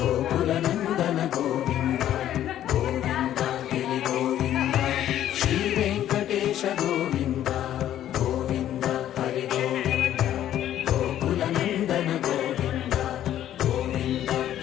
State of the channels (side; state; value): right; quieter; 11.7 dB